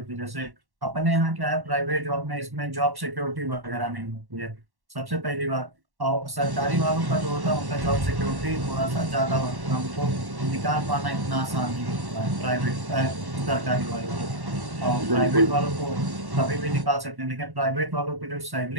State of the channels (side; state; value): left; late; 1.1 ms